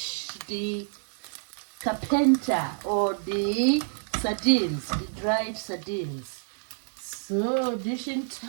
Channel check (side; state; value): left; silent; digital silence